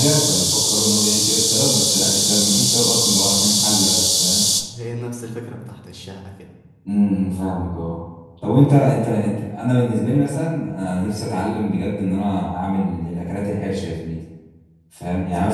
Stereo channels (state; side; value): identical; both; correlation 1.00